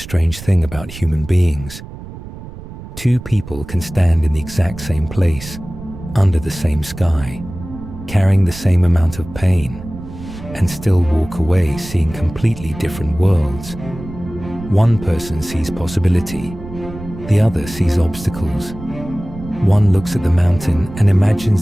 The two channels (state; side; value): noise; right; rumble, 13 dB below the sound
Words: thing about human beings. Two people can stand in the exact same place, under the same sky, carrying the same amount of pain, and still walk away seeing completely different worlds. One person sees possibility, the other sees obstacles. One looks at the mountain and